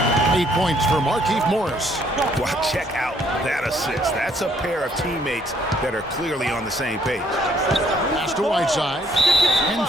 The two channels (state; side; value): normal; both; correlation 0.66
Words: 8 points for Markieff Morris. Well, check out that assist. That's a pair of teammates that are clearly on the same page. Pass to Whiteside. And